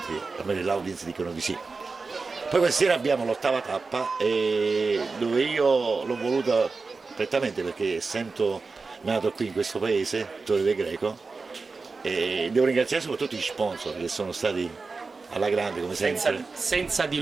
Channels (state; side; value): quieter; left; 4.2 dB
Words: almeno l'audience dicono di sì. Poi questa sera abbiamo l'8ª tappa dove io l'ho voluta prettamente perché essendo nato qui in questo paese, Torre del Greco, e devo ringraziare soprattutto gli sponsor che sono stati alla grande come sempre. Senza di